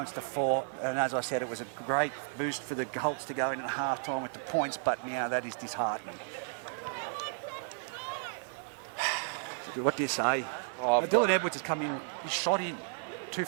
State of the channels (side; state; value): left; silent; 56 dB below the other